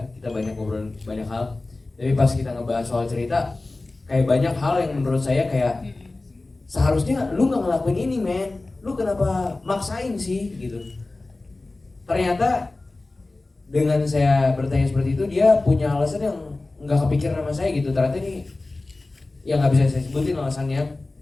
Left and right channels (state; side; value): quieter; right; 3.2 dB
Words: Kita banyak ngobrolin banyak hal. Tapi pas kita ngebahas soal cerita, kayak banyak hal yang menurut saya kayak seharusnya lu nggak ngelakuin ini men. Lu kenapa maksain sih gitu. Ternyata dengan saya bertanya seperti itu dia punya alasan yang nggak kepikiran sama saya gitu. Ternyata ini yang nggak bisa saya sebutin alasannya,